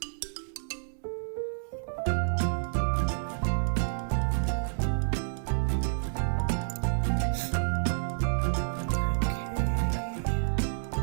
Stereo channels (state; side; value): silent; left; digital silence